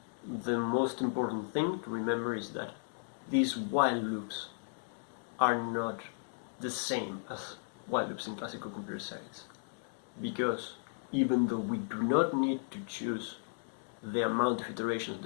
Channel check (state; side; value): silent; right; digital silence